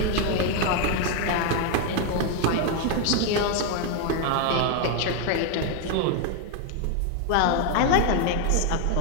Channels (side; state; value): both; different; correlation 0.01